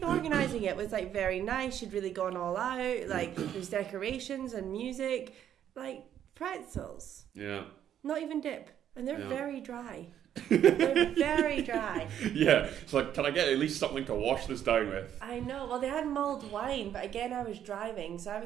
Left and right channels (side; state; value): left; quieter; 10.1 dB